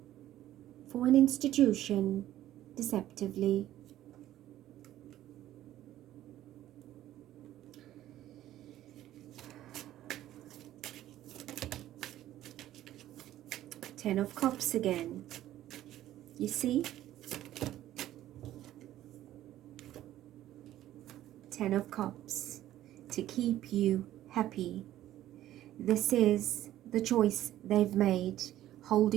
for an institution, deceptively. Ten of Cups again. You see? Ten of Cups. To keep you happy. This is the choice they've made,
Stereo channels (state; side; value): quieter; left; 13.4 dB